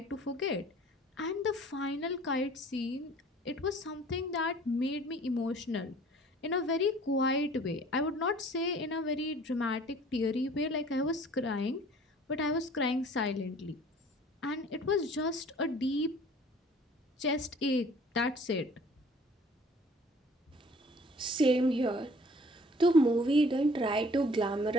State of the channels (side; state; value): both; normal; correlation 0.52